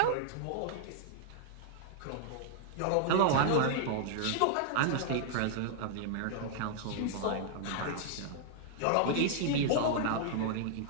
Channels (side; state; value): both; different; correlation -0.01